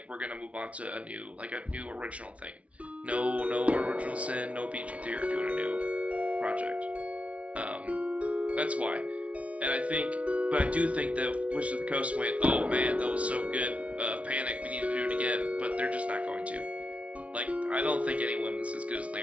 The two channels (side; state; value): left; late; 0.064 ms